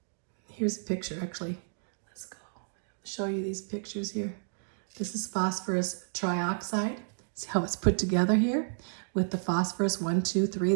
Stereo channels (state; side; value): silent; left; digital silence